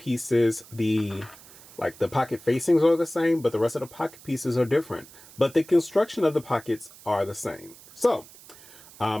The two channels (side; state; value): right; noise; hiss, 21 dB below the sound